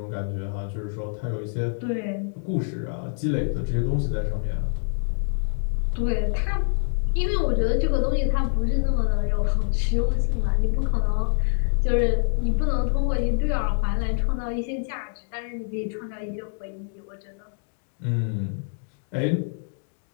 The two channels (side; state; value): right; silent; digital silence